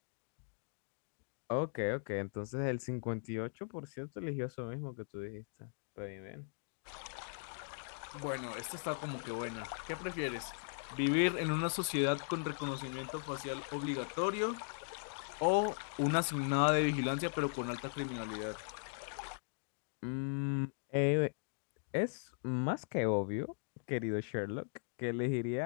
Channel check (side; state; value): right; silent; digital silence